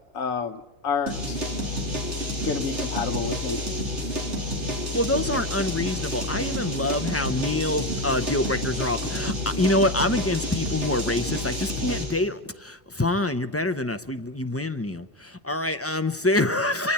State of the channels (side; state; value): both; normal; correlation 0.15